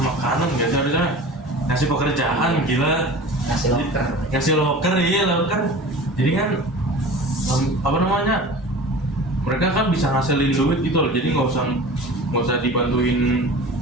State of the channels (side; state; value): both; normal; correlation 0.38